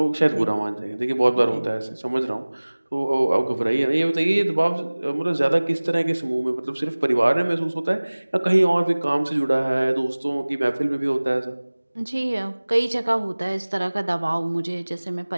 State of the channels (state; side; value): inverted; both; correlation -1.00